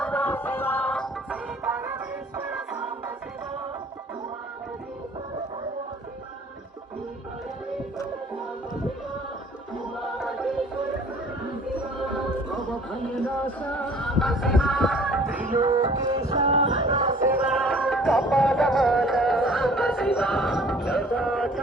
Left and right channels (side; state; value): both; normal; correlation 0.52